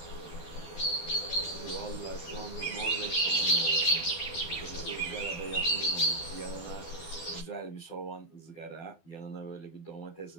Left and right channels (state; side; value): late; right; 12 ms